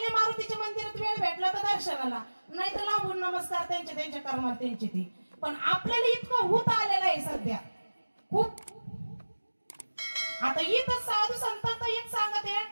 मारुतीच्या मंदिरात वेळ भेटला तर दर्शनाला, नाही तर लांबून नमस्कार त्यांच्या कर्मात त्यांचे ते. पण आपल्याला इतकं होत आलेलं आहे सध्या खूप. आता इथं साधू संतांचं एक सांगत आहे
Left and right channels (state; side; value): inverted; both; correlation -1.00